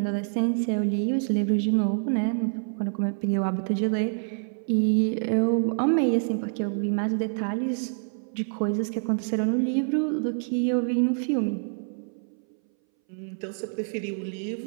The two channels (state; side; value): silent; left; 60 dB below the other